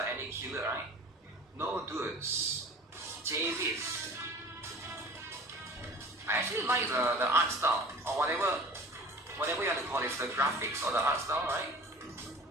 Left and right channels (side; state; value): both; normal; correlation 0.42